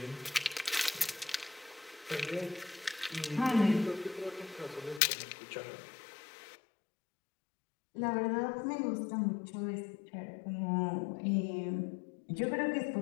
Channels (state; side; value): drops out; right; at 5.0 s